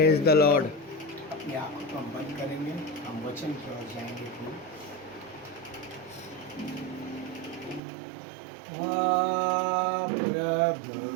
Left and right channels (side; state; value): left; drops out; at 7.8 s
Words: the Lord. अपनी आंखों को हम बंद करेंगे, हम वचन की ओर जाएंगे। प्रभु